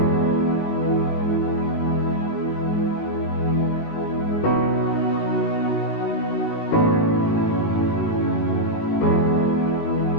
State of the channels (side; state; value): right; late; 19 ms